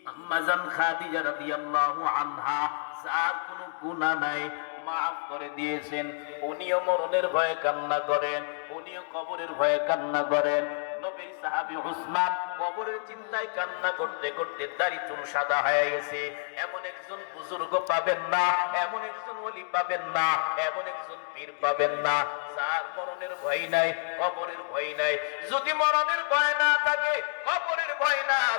আম্মা জান খাদিজা রাদিয়াল্লাহু আনহা, যার কোনো গুনাহ নাই, মাফ করে দিয়েছেন। উনিও মরণের ভয়ে কান্না করেন, উনিও কবরের ভয়ে কান্না করেন। নবীর সাহাবী উসমান কবরের চিন্তায় কান্না করতে করতে দাড়ি চুল সাদা হয়ে গেছে। এমন একজন বুজুর্গ পাবেন না, এমন একজন ওলি পাবেন না, এমন একজন পীর পাবেন না, যার মরণের ভয় নাই, কবরের ভয় নাই। যদি মরণের ভয় না থাকে, কবরের ভয় না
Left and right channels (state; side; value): silent; right; digital silence